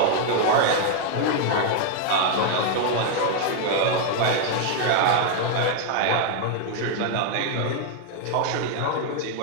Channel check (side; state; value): both; different; correlation 0.00